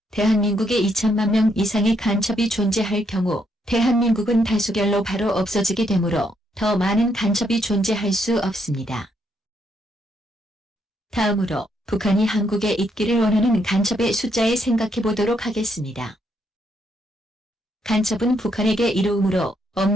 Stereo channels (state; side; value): normal; both; correlation 0.75